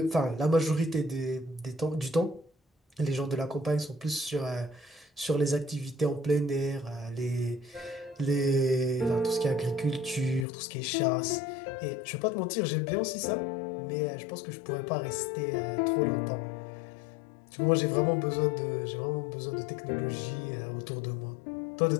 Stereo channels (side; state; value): right; drops out; at 10.5 s